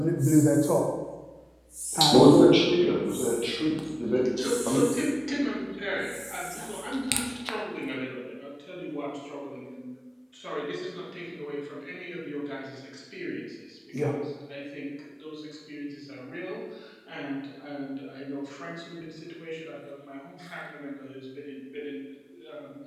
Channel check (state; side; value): identical; both; correlation 1.00